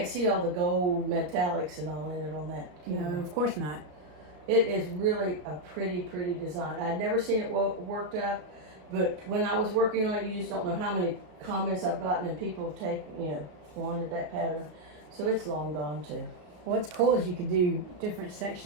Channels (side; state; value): left; late; 33 ms